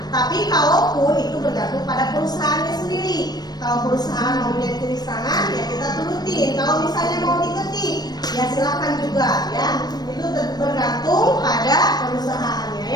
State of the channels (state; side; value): late; right; 0.19 ms